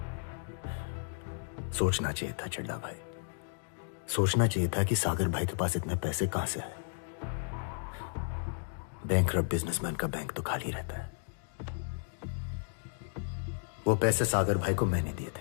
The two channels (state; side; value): silent; right; digital silence